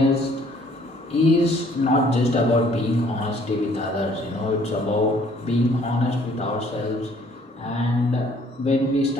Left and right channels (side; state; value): both; normal; correlation 0.60